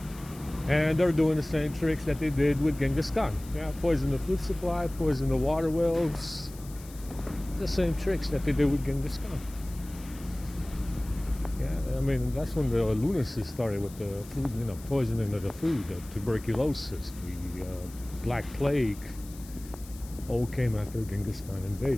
And they're doing the same tricks that they did with Genghis Khan. Yeah, poison the food supply, poison the water wells. The same tricks that they did with Genghis Khan. Yeah, I mean, that's when the lunacy started with the food, poisoning of the food, the tuberculosis, the Black Plague, all came after Genghis Khan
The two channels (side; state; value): left; noise; hiss, 19 dB below the sound